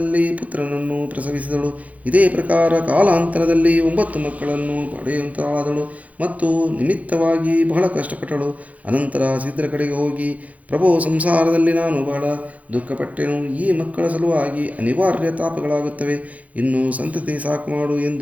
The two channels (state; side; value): late; left; 0.070 ms